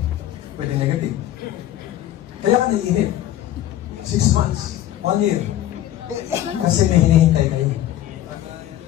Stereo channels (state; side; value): quieter; right; 12.8 dB